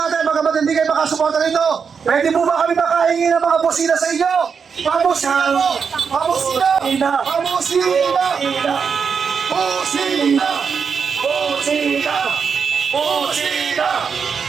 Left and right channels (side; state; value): left; quieter; 6.1 dB